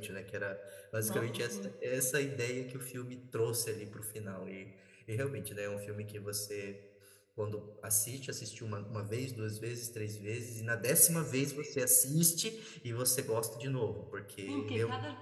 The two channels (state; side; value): identical; both; correlation 1.00